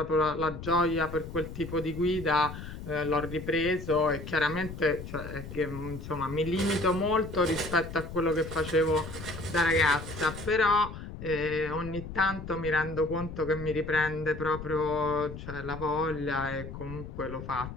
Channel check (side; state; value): left; noise; rumble, 10 dB below the sound